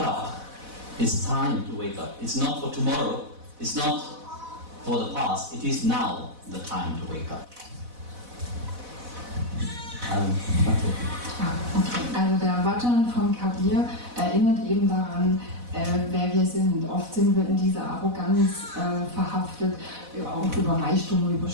It's time to wake up. It's not for tomorrow. It's not for the past. It is now the time to wake up. Okay. Also der Bhajan von Kabir erinnert eben daran, wer wir sind. Oft sind wir in dieser Arroganz verhaftet, auch über Reichtum, über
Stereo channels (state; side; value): late; left; 4.0 ms